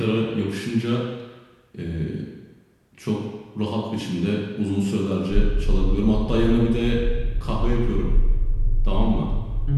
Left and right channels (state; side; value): identical; both; correlation 1.00